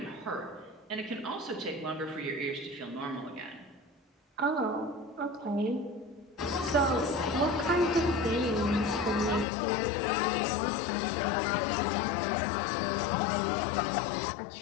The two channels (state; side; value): drops out; right; at 9.5 s